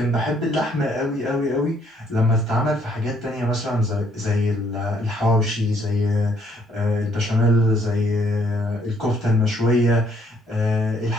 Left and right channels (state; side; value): normal; both; correlation 0.66